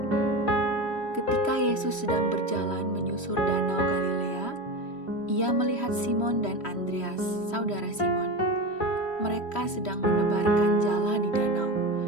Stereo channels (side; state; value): right; late; 3.1 ms